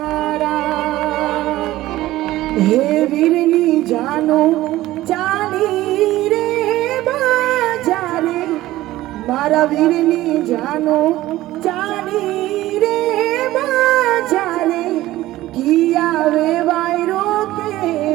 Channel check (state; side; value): quieter; left; 16.1 dB